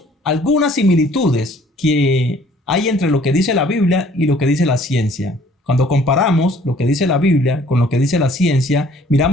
algunas similitudes que hay entre lo que dice la Biblia y lo que dice la ciencia. Cuando comparamos lo que dice la Biblia con lo que dice la ciencia,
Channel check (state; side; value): normal; both; correlation 0.57